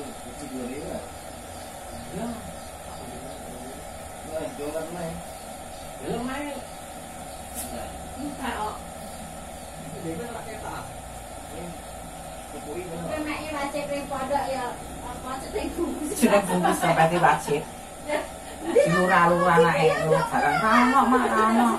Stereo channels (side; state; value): both; identical; correlation 1.00